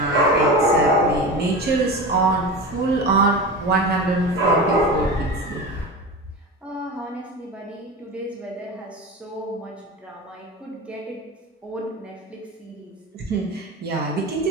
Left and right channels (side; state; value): both; normal; correlation 0.27